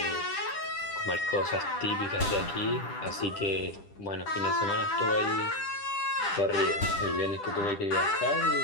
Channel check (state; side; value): late; right; 10 ms